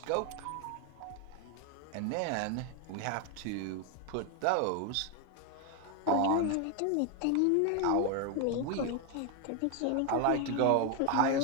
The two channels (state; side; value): different; both; correlation 0.01